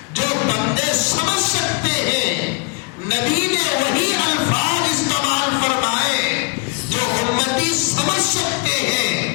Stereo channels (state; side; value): quieter; right; 30.7 dB